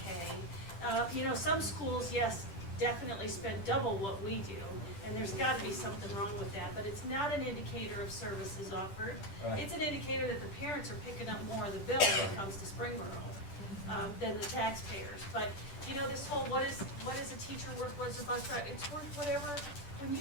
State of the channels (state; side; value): late; right; 10 ms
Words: pay. You know, some schools, yes, definitely spend double what we do. And there's got to be something wrong with that. But it's not an indicator of services offered. Right. It's an indicator that the parents are picking up more of the bill when it comes to Springboro than the taxpayers. But you know, this whole what is a teacher worth, what's a bus driver, it's worth whatever. When